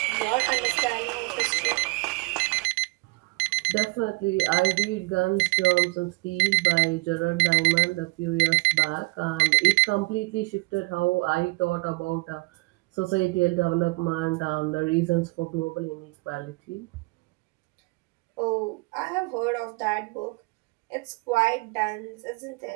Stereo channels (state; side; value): quieter; left; 26.7 dB